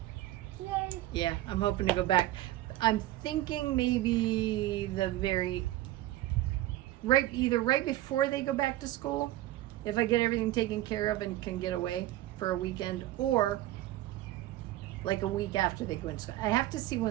Yay. yeah, I'm hoping to go back. I'm thinking maybe either right before they go back to school, if I get everything taken care of and can get away for a weekend, or like a week after they go into school. I have to see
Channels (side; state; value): left; quieter; 15.4 dB